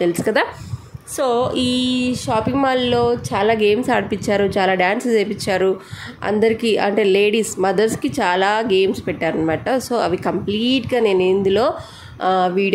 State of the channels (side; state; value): both; identical; correlation 1.00